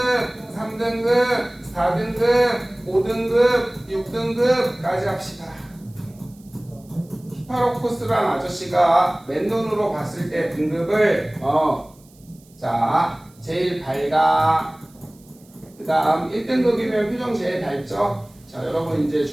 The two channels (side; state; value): right; noise; hiss, 29 dB below the sound